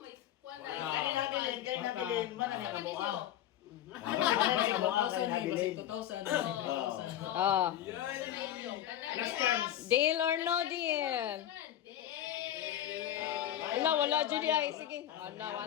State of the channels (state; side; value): quieter; right; 11.8 dB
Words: kuwan na. Kaya nabilin, man ang namuha. 2,000. Oh. Last chance. Deal or no deal? Wala, Judy. Ay, sige.